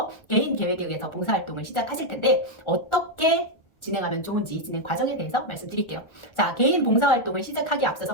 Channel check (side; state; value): right; late; 1.4 ms